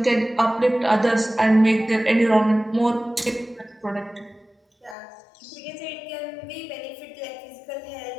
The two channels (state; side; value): drops out; right; at 5.0 s